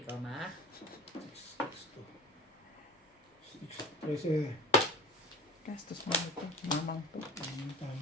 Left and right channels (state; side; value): normal; both; correlation 0.35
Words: goma. 13. Gastos mo ito. Mamang po. Ang